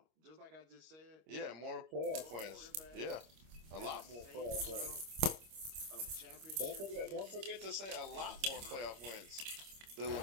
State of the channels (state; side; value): late; left; 26 ms